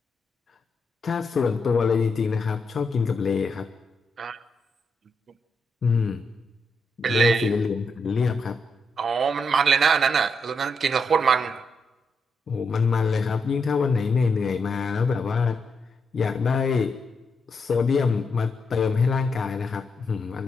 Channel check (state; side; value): normal; both; correlation 0.81